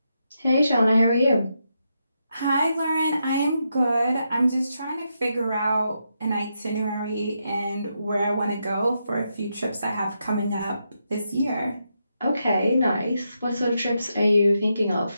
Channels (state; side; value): inverted; both; correlation -0.83